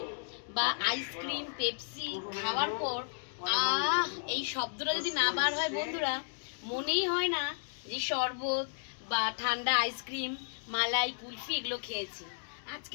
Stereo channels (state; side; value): silent; right; digital silence